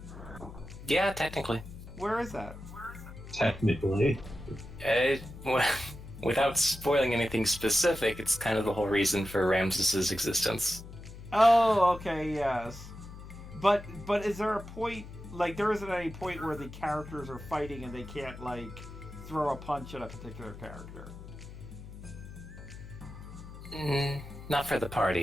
Yeah, technically. Where is that? Technically. Well, without spoiling anything specific, it's kind of the whole reason for Ramses's existence. Oh, okay, yes. But is there a point, like there isn't any point where the characters are fighting and they can't like throw a punch at a particular character? Not for the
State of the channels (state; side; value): noise; left; hum, 14 dB below the sound